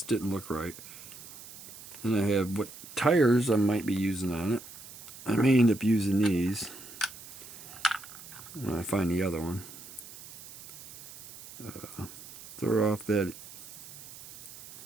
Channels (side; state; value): right; noise; hiss, 15 dB below the sound